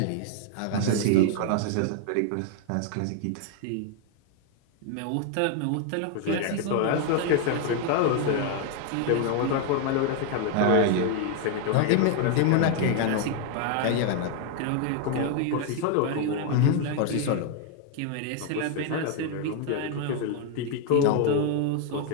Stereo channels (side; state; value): both; different; correlation 0.00